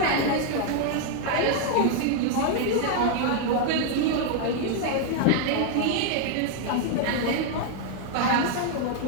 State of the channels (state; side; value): different; both; correlation 0.00